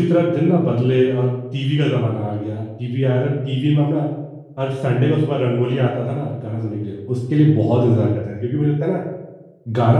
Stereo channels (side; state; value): both; identical; correlation 1.00